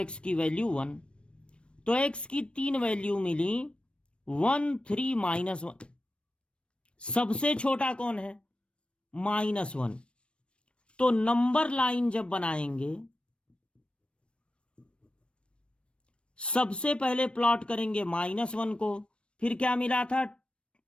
की वैल्यू 1। तो x की 3 वैल्यू मिली, 1 3 -1। सबसे छोटा कौन है, -1। तो नंबर लाइन जब बनाएंगे सबसे पहले प्लॉट करेंगे -1 को, फिर क्या मिला था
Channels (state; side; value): late; right; 0.058 ms